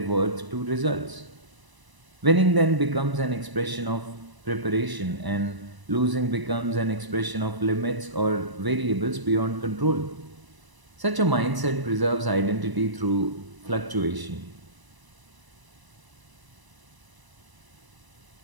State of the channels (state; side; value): late; left; 1.0 ms